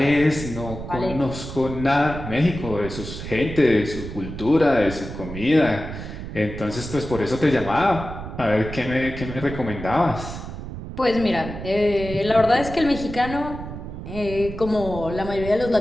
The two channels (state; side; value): noise; right; rumble, 9 dB below the sound